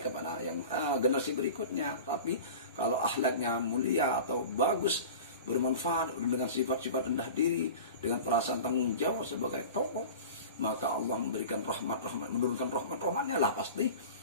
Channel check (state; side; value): inverted; both; correlation -0.36